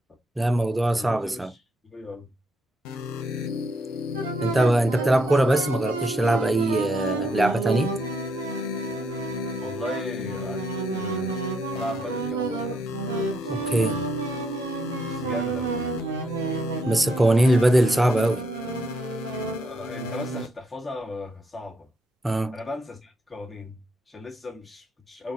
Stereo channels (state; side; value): normal; both; correlation 0.76